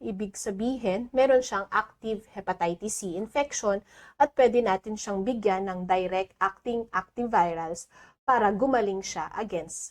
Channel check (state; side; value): identical; both; correlation 1.00